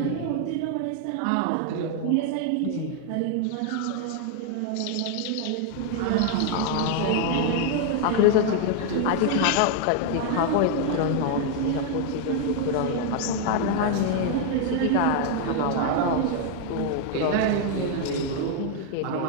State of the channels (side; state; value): both; different; correlation 0.00